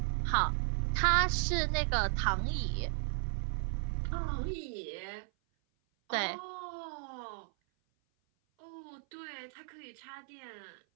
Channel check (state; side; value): silent; left; 54 dB below the other